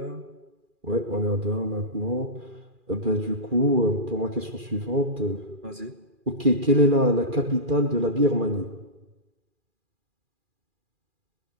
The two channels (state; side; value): late; left; 2.4 ms